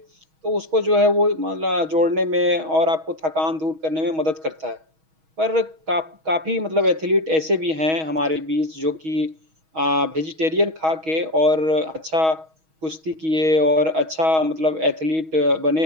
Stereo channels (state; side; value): late; left; 6.3 ms